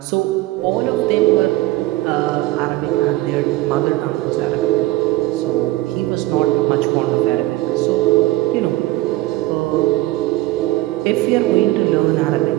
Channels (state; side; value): quieter; left; 18.0 dB